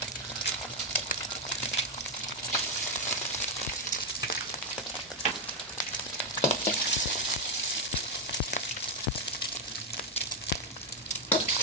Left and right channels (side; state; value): both; normal; correlation 0.03